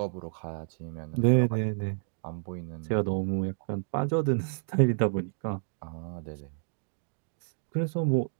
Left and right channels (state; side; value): silent; left; digital silence